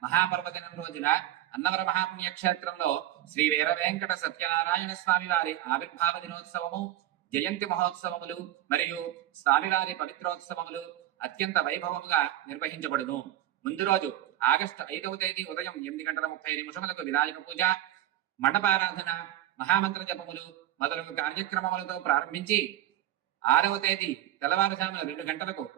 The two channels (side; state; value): left; quieter; 13.3 dB